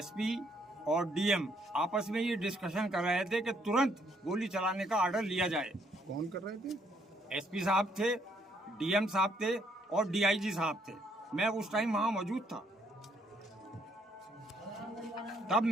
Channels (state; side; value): normal; both; correlation 0.70